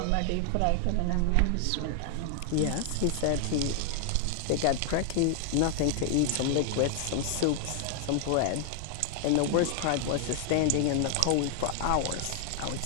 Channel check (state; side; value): different; both; correlation 0.00